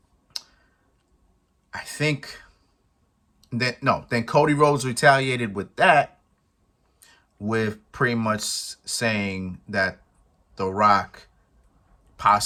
I think then Cody Rhodes retaliated with that, with pretty much saying that The Rock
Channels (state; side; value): identical; both; correlation 1.00